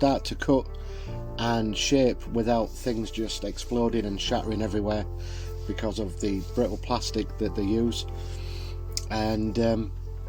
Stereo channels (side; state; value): both; identical; correlation 1.00